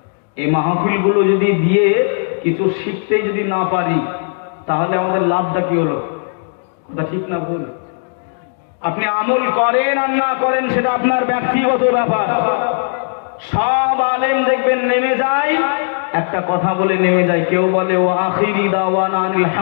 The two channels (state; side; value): silent; right; digital silence